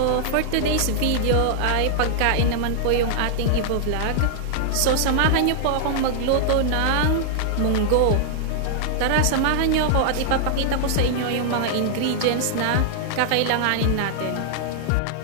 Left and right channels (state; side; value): different; both; correlation -0.01